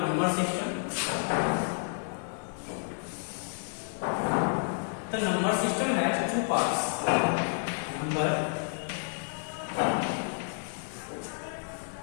number system. The number system has two parts. Number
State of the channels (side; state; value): right; silent; 57 dB below the other